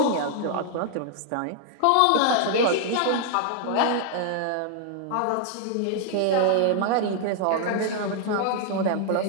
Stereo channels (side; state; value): both; different; correlation 0.00